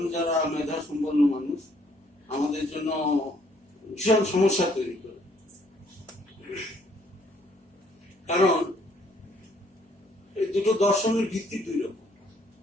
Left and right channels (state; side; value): normal; both; correlation 0.65